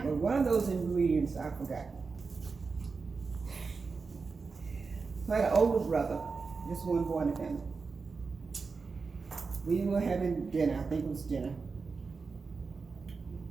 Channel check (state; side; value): quieter; left; 4.6 dB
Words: But one of those ingredients I forgot. So I had an older brother, just one boy in the family. We were having dinner, I think it was dinner.